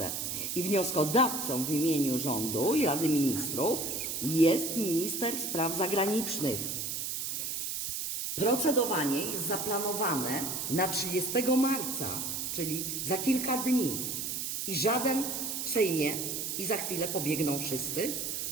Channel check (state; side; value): noise; right; hiss, 3 dB below the sound